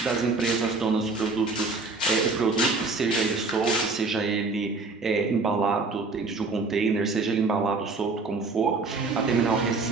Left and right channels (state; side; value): quieter; left; 3.8 dB